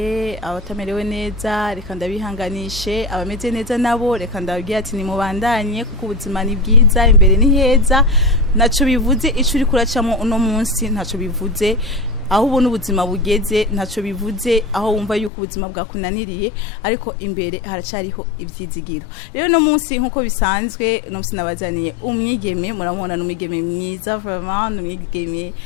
abatamerewe neza reka ndabihanganishe abameze neza nabo reka ndababwira ati ni mubandanye kuko ubuzima ni bwiza imbere ni heza naco bivuze ico uri kuracamo uno munsi ntaco bivuze aho ubona ubuzima bugeze ntaco bivuze aho wumva yuko ubuzima bwakunaniriye ariko imbere haracariho ivyizigiro rero no munsi nkuko bisanzwe no munsi nabazaniye umwigeme muramubona n'umwigeme mwiza vraiment n'umwigeme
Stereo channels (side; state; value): right; drops out; at 15.3 s